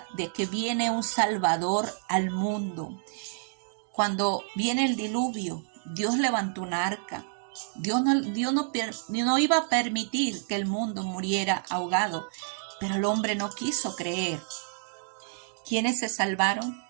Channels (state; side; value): silent; left; digital silence